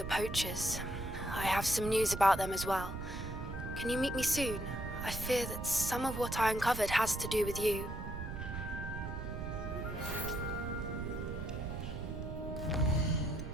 poachers. I have some news about them as well. Can you meet me soon? I fear that some of what I uncovered has to do with you.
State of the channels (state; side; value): noise; right; rumble, 6 dB below the sound